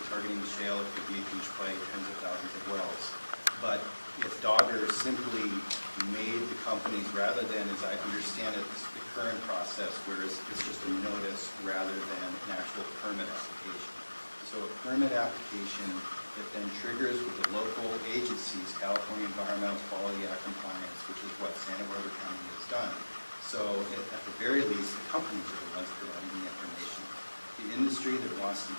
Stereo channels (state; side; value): inverted; both; correlation -1.00